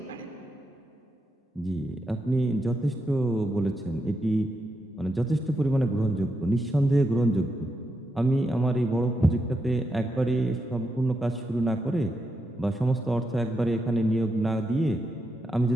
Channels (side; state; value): both; normal; correlation 0.83